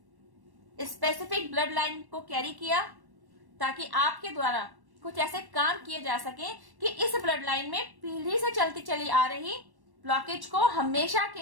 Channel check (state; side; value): late; left; 1.1 ms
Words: स्पेसिफिक ब्लड लाइन को कैरी किया ताकि आपके द्वारा कुछ ऐसे काम किए जा सके कि इस ब्लड लाइन में पीढ़ी से चलती चली आ रही ब्लॉकेज को हमेशा